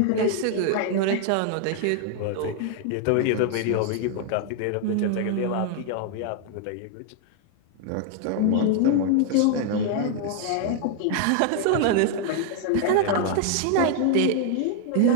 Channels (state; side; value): different; both; correlation 0.00